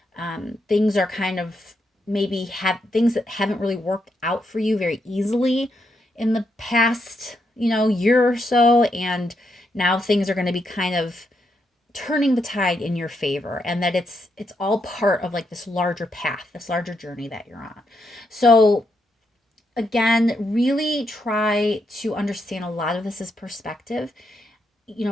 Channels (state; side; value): normal; both; correlation 0.80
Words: Things are kind of maybe have things that haven't really worked out for you very easily in the past, year or so. And now things are going to be kind of turning the tide in your favor, and that it's all part of like this larger path, this larger journey that you're on. So again, really try to understand a lot of this is perspective.